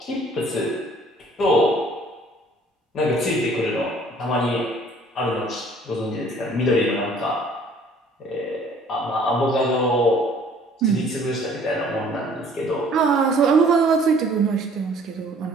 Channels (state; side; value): normal; both; correlation 0.55